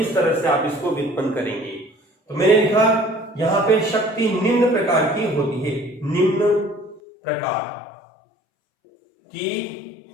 तरह से आप इसको व्युत्पन्न करेंगे। तो मैंने लिखा यहां पे शक्ति निम्न प्रकार की होती है, निम्न प्रकार की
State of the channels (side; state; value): right; drops out; at 7.0 s